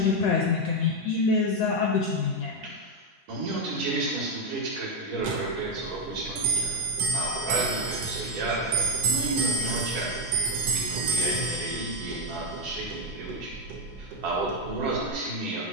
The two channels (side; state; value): both; normal; correlation 0.04